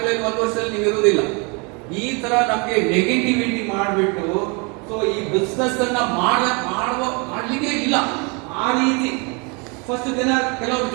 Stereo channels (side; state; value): left; quieter; 31.6 dB